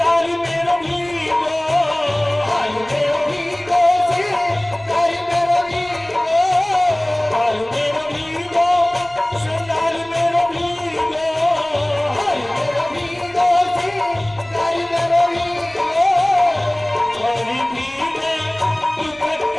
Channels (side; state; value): right; noise; rumble, 26 dB below the sound